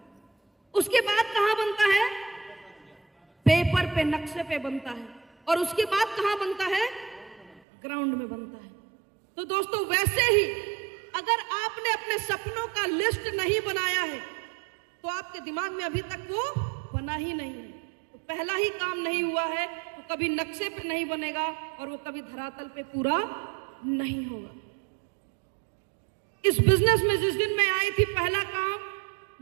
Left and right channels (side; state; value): left; drops out; at 7.6 s